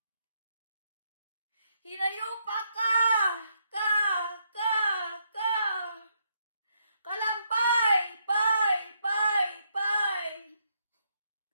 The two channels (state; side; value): inverted; both; correlation -0.76